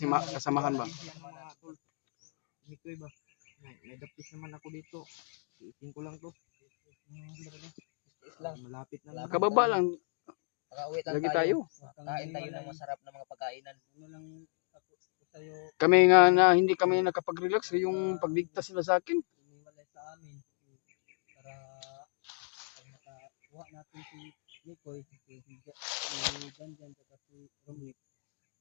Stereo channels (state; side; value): silent; right; 55 dB below the other